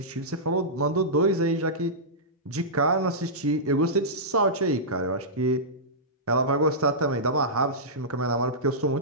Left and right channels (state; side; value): normal; both; correlation -0.15